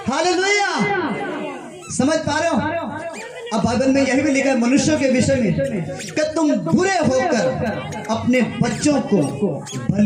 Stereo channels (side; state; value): both; identical; correlation 1.00